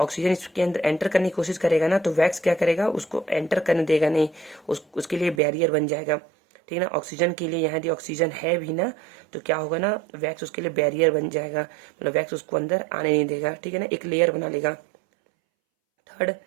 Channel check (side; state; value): left; drops out; at 5.4 s